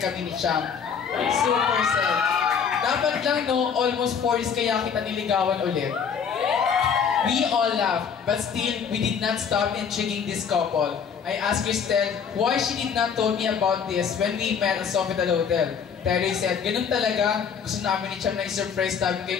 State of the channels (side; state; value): right; quieter; 6.9 dB